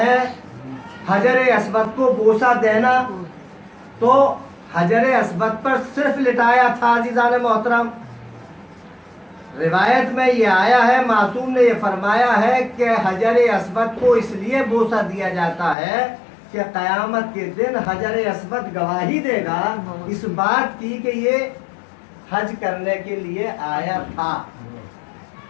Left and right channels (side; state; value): right; drops out; at 15.8 s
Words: ہے حجر اسود کو بوسہ دینا، تو حجر اسود پر صرف لٹایا تھا عزیزان محترم۔ روایت میں یہ آیا ہے، معصوم نے یہ فرمایا ہے کہ حجر اسود کو اس لیے بوسہ دیا جاتا ہے کہ قیامت کے دن حجر اسود گواہی دے گا اس بات کی کہ یہ حج کرنے کے لیے آیا تھا۔